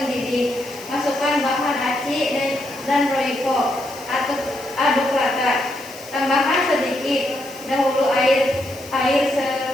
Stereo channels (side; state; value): left; noise; hiss, 19 dB below the sound